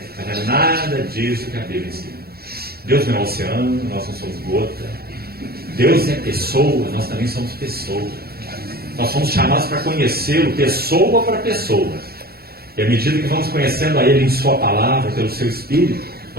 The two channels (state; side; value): late; left; 0.45 ms